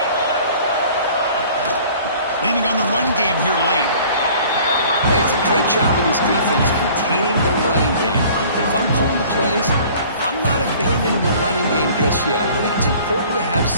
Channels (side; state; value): both; inverted; correlation -0.50